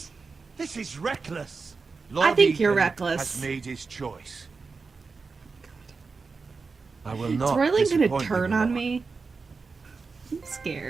is reckless. I think you're Ethan reckless. Has made his choice. I will Is not. Royland gonna disappoint you, turn my on lord. me? I'm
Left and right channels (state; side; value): quieter; left; 4.5 dB